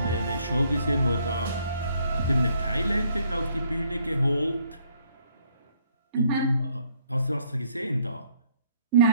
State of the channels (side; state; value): both; inverted; correlation -0.66